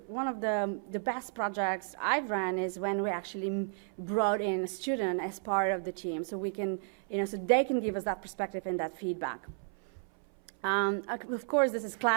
the best projects I've run is when we actually brought in a student as part of the team, so we can, so they can give us that perspective and that feedback. Of course, this is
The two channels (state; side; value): silent; left; 56 dB below the other